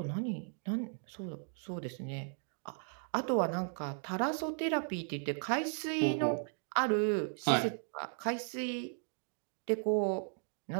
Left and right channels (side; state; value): left; silent; 54 dB below the other